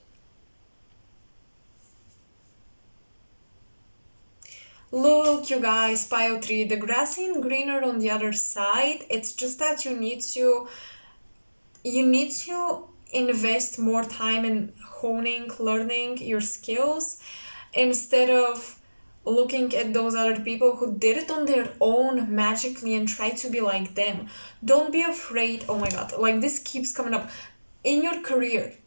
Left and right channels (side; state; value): both; inverted; correlation -1.00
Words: Look, you guys, pile 3, the grass ain't greener on the other side. It's just that you need to invest more time in honing, learning your skills, instead of looking at those other people who did it on their own magically and try to be like them. Don't be afraid. Oh my god, like, this keeps coming up. In your career,